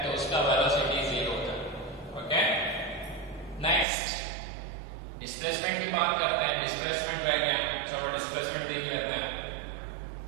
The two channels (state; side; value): drops out; left; at 3.9 s